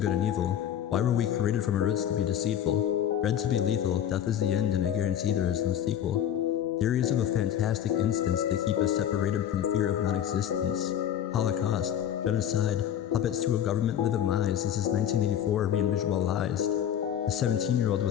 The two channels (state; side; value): quieter; right; 10.1 dB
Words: good and evil? Why were we created from our roots to be deceitful? Bred to be lethal, death is the end and I guarantee there is no sequel. Theories of a fantastic instance, they keep us separated from fear of non-existence. Holocaust, genocide, puppets to a government live in lies. This is 1984 re-visualized. A 17-year-old